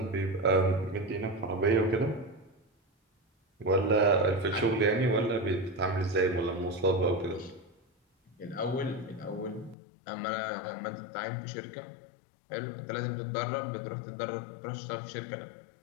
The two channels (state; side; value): drops out; right; at 9.8 s